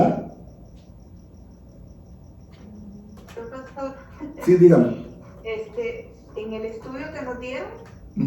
Profesor, Sí, dígame. en el estudio que nos dieron,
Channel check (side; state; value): both; identical; correlation 1.00